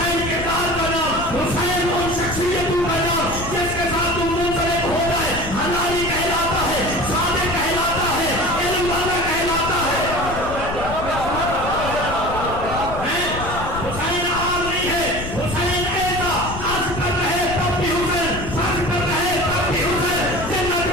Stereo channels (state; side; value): noise; left; rumble, 8 dB below the sound